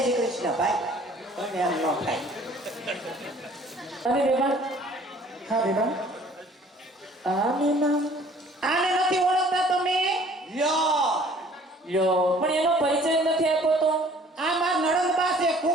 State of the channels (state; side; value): normal; both; correlation 0.54